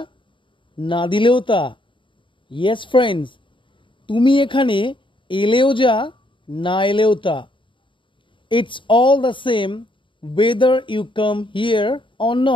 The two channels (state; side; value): late; right; 0.24 ms